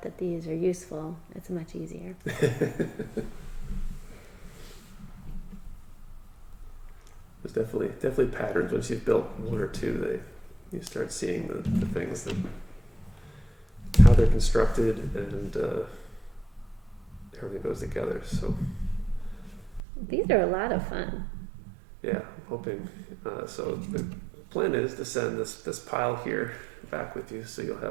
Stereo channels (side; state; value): left; drops out; at 19.8 s